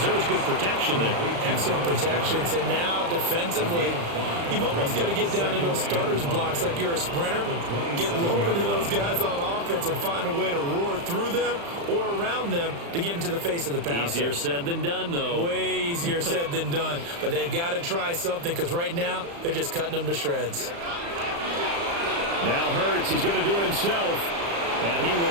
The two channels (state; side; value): late; left; 35 ms